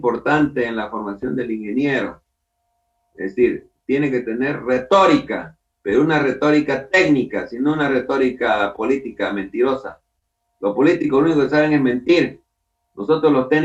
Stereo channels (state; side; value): identical; both; correlation 1.00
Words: en la formación del ingeniero. Es decir, tiene que tener retórica, pero una retórica técnica, sino una retórica política mentirosa. Los políticos lo único que saben es mentir. Nosotros los